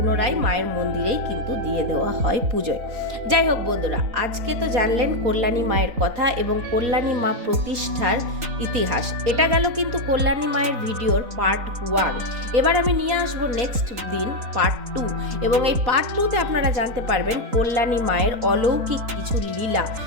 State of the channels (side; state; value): left; late; 3.9 ms